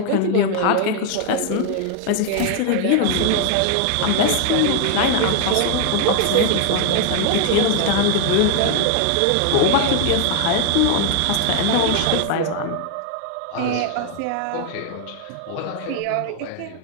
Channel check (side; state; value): both; different; correlation 0.00